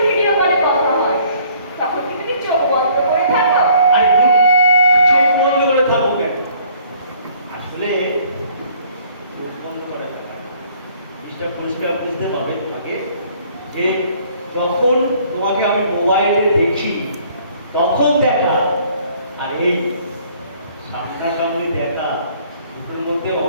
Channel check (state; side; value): inverted; both; correlation -0.58